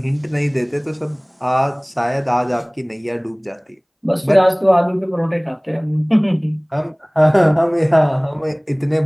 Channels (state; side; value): identical; both; correlation 1.00